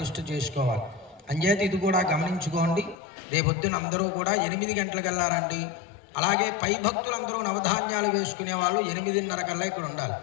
చేసుకోవాలి. అంచేత ఇది కూడా గమనించుకోండి. రేపొద్దున అందరూ కూడా 8 గంటలకు వెళ్ళారండి. అలాగే పై భక్తులందరూ నవధాన్యాలు వేసుకునే వాళ్ళు 8:30 కల్లా ఇక్కడ ఉండాలి.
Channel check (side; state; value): right; drops out; at 3.0 s